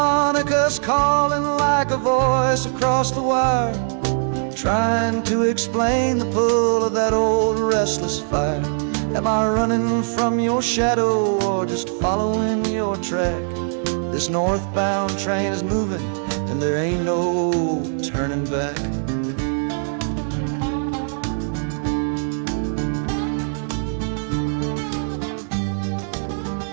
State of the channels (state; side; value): silent; left; digital silence